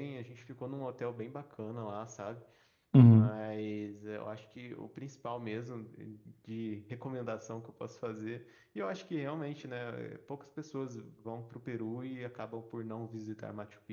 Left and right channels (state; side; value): identical; both; correlation 1.00